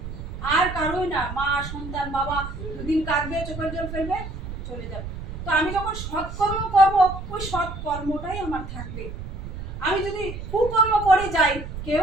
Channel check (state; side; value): noise; right; rumble, 9 dB below the sound